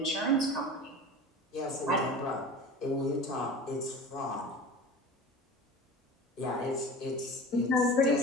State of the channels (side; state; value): both; normal; correlation 0.36